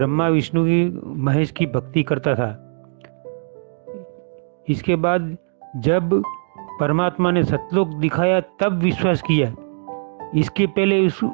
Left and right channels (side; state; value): left; silent; digital silence